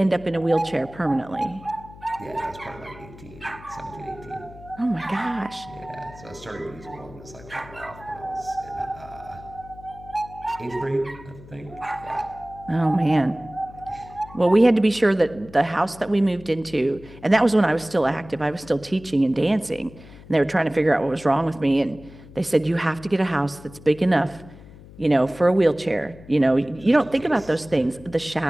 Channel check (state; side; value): noise; left; hum, 19 dB below the sound